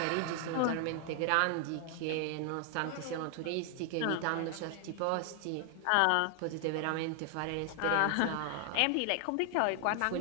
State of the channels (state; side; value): different; both; correlation 0.00